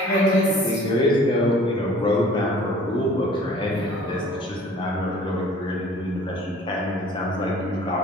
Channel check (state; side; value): normal; both; correlation 0.50